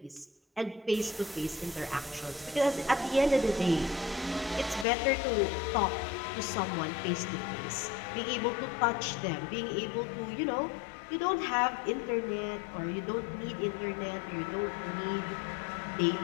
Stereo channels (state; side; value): drops out; right; at 4.9 s